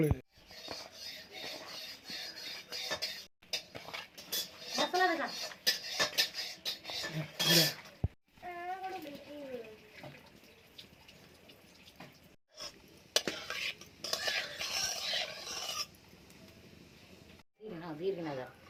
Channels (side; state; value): both; identical; correlation 1.00